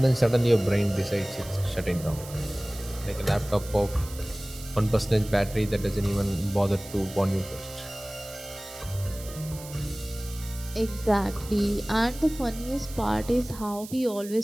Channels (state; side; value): noise; right; hiss, 15 dB below the sound